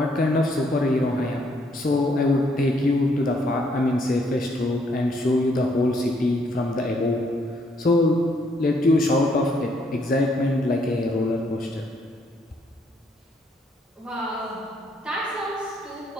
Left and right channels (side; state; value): both; normal; correlation 0.70